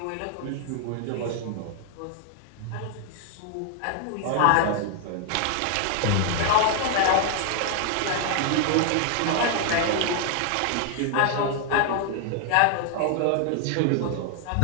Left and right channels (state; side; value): different; both; correlation 0.00